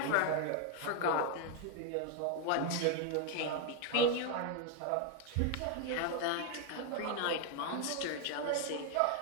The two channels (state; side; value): different; both; correlation 0.01